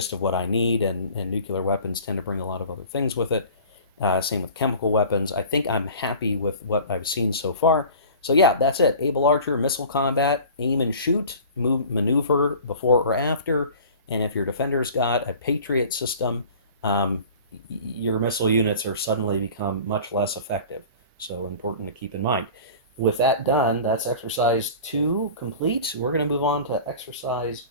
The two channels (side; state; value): both; inverted; correlation -0.42